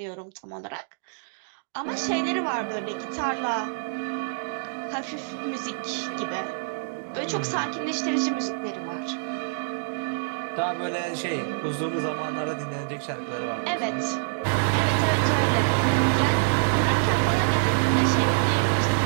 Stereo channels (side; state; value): left; silent; digital silence